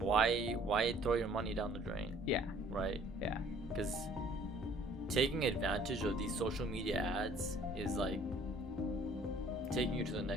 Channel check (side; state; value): both; normal; correlation 0.56